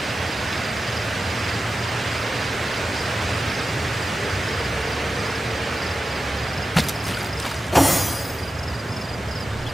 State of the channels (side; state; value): both; normal; correlation 0.92